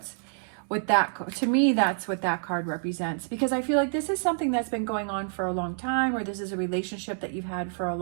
to me, that's what that card represents, because I feel like this is something that's been going on for a long time, or this is a relationship that you've had for a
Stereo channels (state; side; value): silent; left; 60 dB below the other